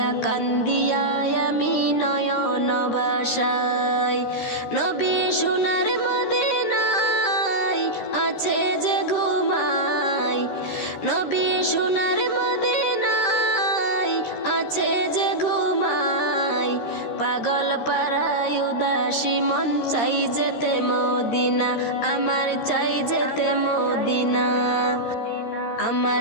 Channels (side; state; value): right; late; 13 ms